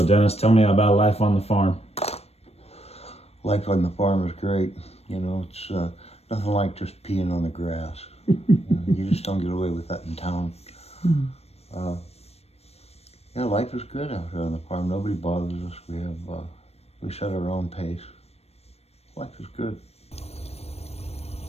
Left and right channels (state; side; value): late; right; 0.30 ms